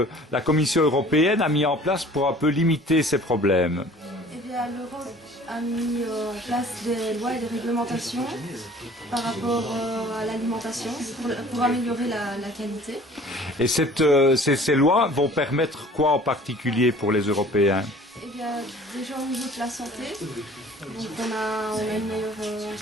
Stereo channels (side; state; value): both; normal; correlation 0.49